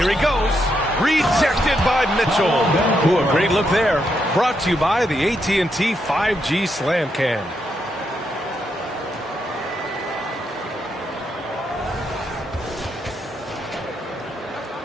he goes. Rejected by Mitchell. Ooh, a great look there. Brought to you by the AT&T 5G Slam Cam.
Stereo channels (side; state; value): both; normal; correlation 0.80